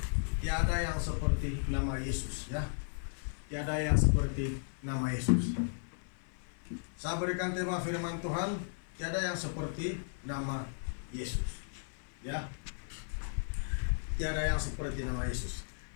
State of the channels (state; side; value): silent; right; 54 dB below the other